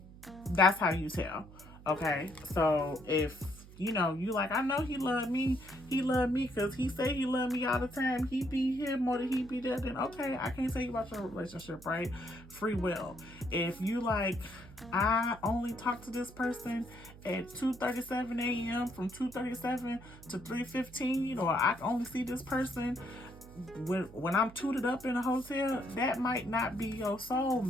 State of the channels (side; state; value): right; noise; hum, 19 dB below the sound